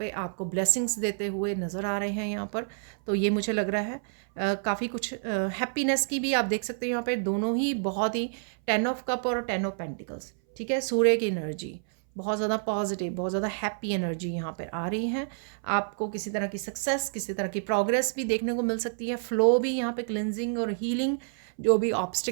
आपको ब्लेसिंग्स देते हुए नज़र आ रहे हैं यहाँ पर। तो ये मुझे लग रहा है काफ़ी कुछ हैप्पीनेस की भी आप देख सकते हो यहाँ पे। दोनों ही बहुत ही 10 ऑफ कप और 10 ऑफ पेंटिकल्स। ठीक है, सूर्य की एनर्जी, बहुत ज़्यादा पॉजिटिव, बहुत ज़्यादा हैप्पी एनर्जी यहाँ पर आ रही है। आपको किसी तरह की सक्सेस, किसी तरह की प्रोग्रेस भी देखने को मिल सकती है। फ्लो भी यहाँ पे क्लिनजिंग और हीलिंग, जो भी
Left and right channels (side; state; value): left; silent; 58 dB below the other